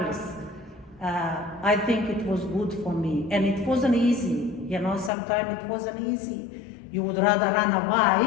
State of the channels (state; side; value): drops out; right; at 5.1 s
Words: I think it was good for me. And it wasn't easy, you know, sometimes it wasn't easy. You would rather run